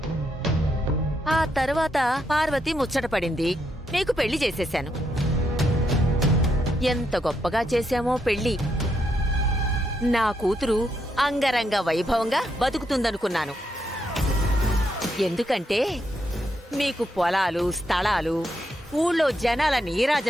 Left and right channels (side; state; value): both; normal; correlation 0.79